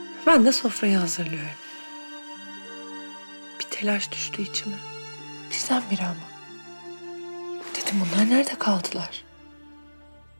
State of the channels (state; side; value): inverted; both; correlation -1.00